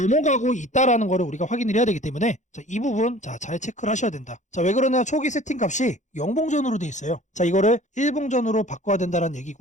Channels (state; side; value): late; right; 0.35 ms